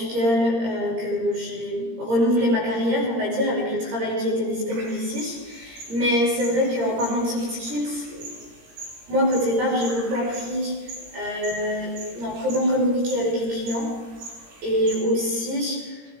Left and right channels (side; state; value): left; late; 17 ms